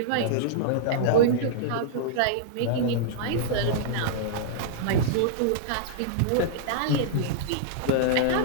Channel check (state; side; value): different; both; correlation -0.02